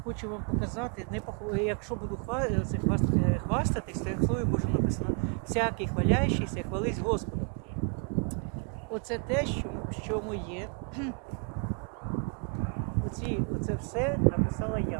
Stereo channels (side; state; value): left; quieter; 38.3 dB